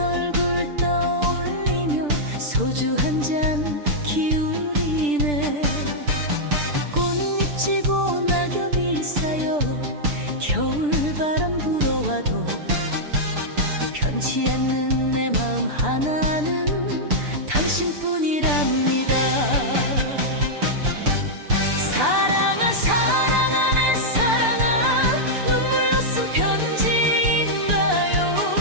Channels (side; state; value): left; late; 6.8 ms